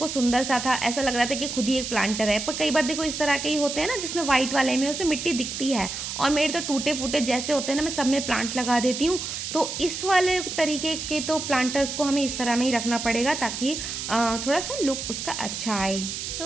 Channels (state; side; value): noise; right; hiss, 5 dB below the sound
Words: सुंदर सा था, ऐसा लग रहा था कि खुद ही एक प्लांटर है, पर कई बार देखो इस तरह के ही होते हैं ना जिसमें वाइट वाले में उसमें मिट्टी दिखती है, और मेरे तो टूटे फूटे जैसे होते हैं ना मैं सब में प्लांट लगा देती हूँ। तो इस वाले तरीके के तो प्लांटर्स को हमें इस तरह में ही रखना पड़ेगा ताकि थोड़ा सा लुक उसका अच्छा आए।